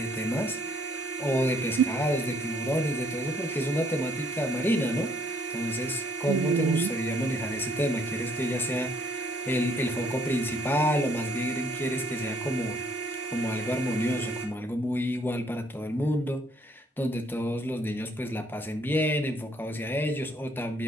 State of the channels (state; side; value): normal; both; correlation 0.64